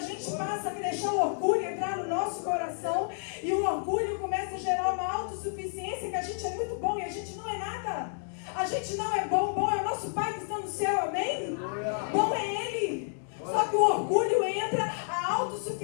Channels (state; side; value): silent; right; digital silence